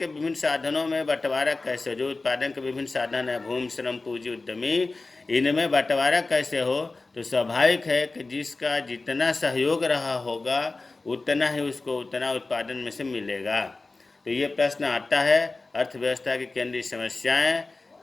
विभिन्न साधनों में बंटवारा कैसे। जो उत्पादन के विभिन्न साधन है, भूमि, श्रम, पूंजी, उद्यमी, इनमें बंटवारा कैसे हो। तो स्वाभाविक है कि जिसका जितना सहयोग रहा होगा उतना ही उसको उतना उत्पादन में से मिलेगा। तो ये प्रश्न आता है अर्थव्यवस्था की केंद्रीय समस्याएं।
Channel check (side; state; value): right; quieter; 3.5 dB